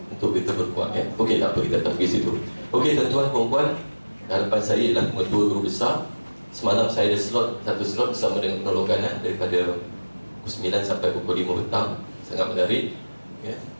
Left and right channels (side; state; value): both; inverted; correlation -1.00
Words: untuk kita berkuat ya. Okey, tak apa, kita tak pergi situ. Okey tuan-tuan perempuan, harapan saya ialah mengetua guru besar. Semalam saya ada satu slot bersama dengan penolongan daripada pukul 9 sampai pukul 5 petang. Sangat menarik ya.